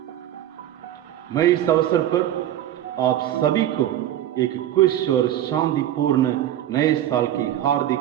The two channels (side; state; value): left; quieter; 12.1 dB